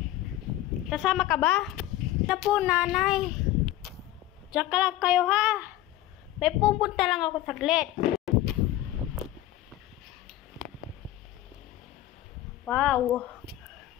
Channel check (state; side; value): quieter; right; 14.3 dB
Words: Kasama ka ba? Na po, nanay. Diyan ka lang kayo, ha? May pupunta lang ako saglit. Wow.